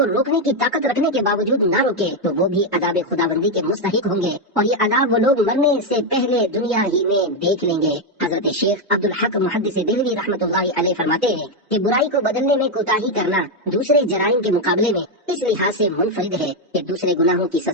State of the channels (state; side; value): normal; both; correlation 0.04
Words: روکنے کی طاقت رکھنے کے باوجود نہ روکے تو وہ بھی عذاب خداوندی کے مستحق ہوں گے، اور یہ عذاب وہ لوگ مرنے سے پہلے دنیا ہی میں دیکھ لیں گے۔ حضرت شیخ عبدالحق محدث دہلوی رحمۃ اللہ علیہ فرماتے ہیں کہ برائی کو بدلنے میں کوتاہی کرنا دوسرے جرائم کے مقابلے میں اس لحاظ سے منفرد ہے کہ دوسرے گناہوں کی